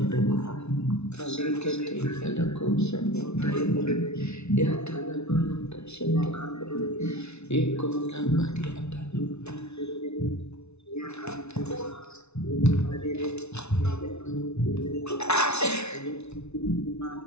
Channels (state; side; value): late; right; 0.81 ms